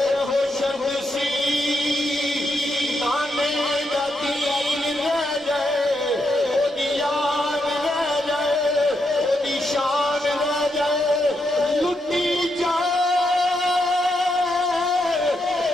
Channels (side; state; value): both; normal; correlation 0.81